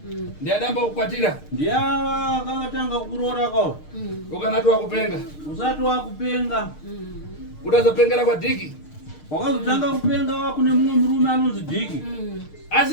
ndiadamba kukwatira ndiava akatanga kuroora kao ukanati wakupenga usati wakupenga utazopengera kwa dhiki wakazotanga kupenga wakune mumwe murume anonzi dhiki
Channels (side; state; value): right; late; 6.6 ms